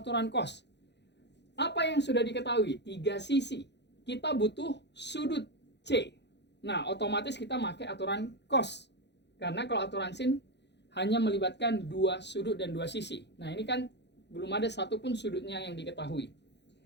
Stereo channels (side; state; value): right; late; 0.50 ms